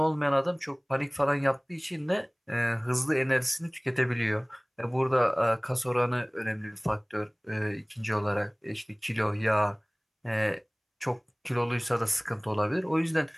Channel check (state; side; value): identical; both; correlation 1.00